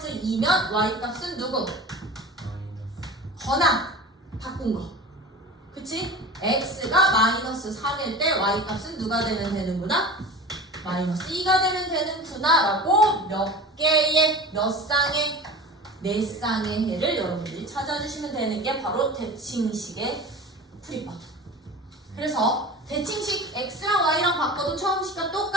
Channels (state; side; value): normal; both; correlation 0.35